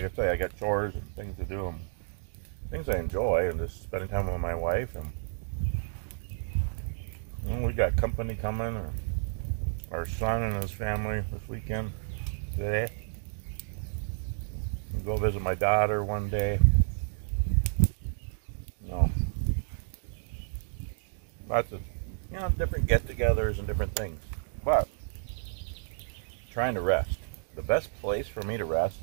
I say, I got chores and things to do, and things I enjoy, and just spending time with my wife. And we got company coming, our son and his family this weekend today. We'll go visit my daughter one day. Lots of different get-togethers and different things. But trying to rest. The best place for me to rest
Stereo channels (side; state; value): left; silent; digital silence